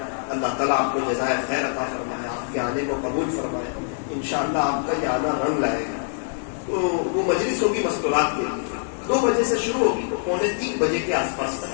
اللہ تعالیٰ آپ کو جزائے خیر عطا فرمائے، آپ کے آنے کو قبول فرمائے. انشاءاللہ آپ کا یہ آنا رنگ لائے گا. تو وہ مجلس ہوگی مستورات کے لیے، 2 بجے سے شروع ہوگی، 2:45 بجے کے آس پاس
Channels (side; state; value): right; silent; digital silence